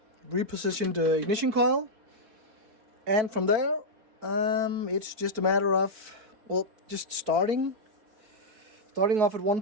Repositioned ignition coil, and from there it's just a matter of, well, just starting off at one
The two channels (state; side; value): late; left; 4.6 ms